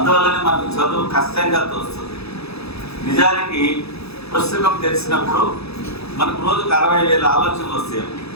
మనకు చదువు కష్టంగా తోస్తుంది. నిజానికి పుస్తకం తెలిసినప్పుడు మనకు రోజుకు 60,000 ఆలోచనలు వస్తాయి.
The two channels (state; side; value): late; right; 0.78 ms